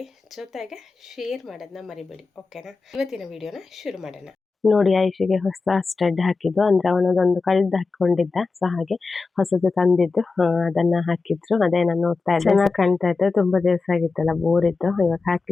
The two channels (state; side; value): quieter; right; 4.1 dB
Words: ಜೊತೆಗೆ ಶೇರ್ ಮಾಡೋದನ್ನ ಮರಿಬೇಡಿ. ಓಕೆನಾ? ಇವತ್ತಿನ ವಿಡಿಯೋನ ಶುರು ಮಾಡೋಣ. ನೋಡಿ, ಐಶಿಗೆ ಹೊಸ ಸ್ಟಡ್ ಹಾಕಿದ್ದು, ಅಂದ್ರೆ ಅವನದೊಂದು ಕಳ್ದು ಹಾಕೊಂಡಿದ್ದ, ಸೊ ಹಾಗೆ ಹೊಸದು ತಂದಿದ್ದು ಅದನ್ನ ಹಾಕಿದ್ರು. ಅದೇ ನಾನು ನೋಡ್ತಾ ಇದ್ದೆ, ಚೆನ್ನಾಗಿ ಕಾಣ್ತಾ ಇತ್ತು. ತುಂಬಾ ದಿವಸ ಆಗಿತ್ತಲ್ಲ, ಬೋರ್ ಇತ್ತು. ಇವಾಗ